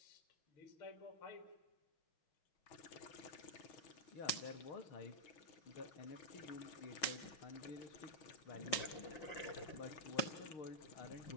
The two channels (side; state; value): right; late; 5.5 ms